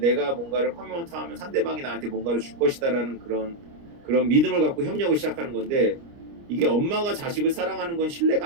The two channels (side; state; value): left; late; 29 ms